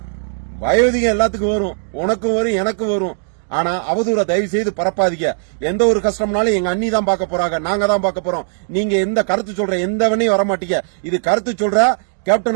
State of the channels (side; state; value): left; silent; digital silence